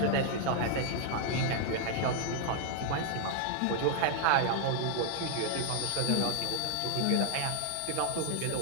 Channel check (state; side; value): different; both; correlation 0.00